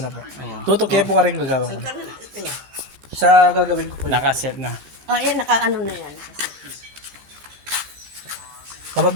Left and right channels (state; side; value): late; left; 14 ms